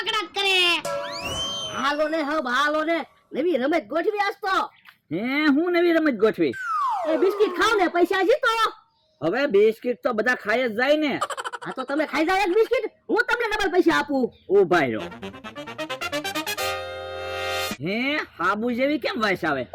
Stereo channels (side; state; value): both; identical; correlation 1.00